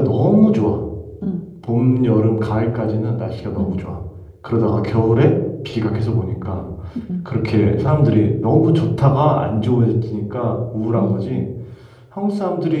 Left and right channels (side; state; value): both; identical; correlation 1.00